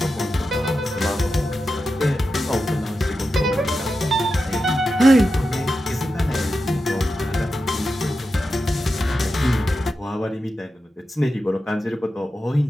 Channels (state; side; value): normal; both; correlation 0.90